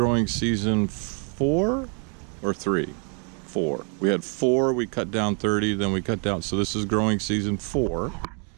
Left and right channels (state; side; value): quieter; left; 39.2 dB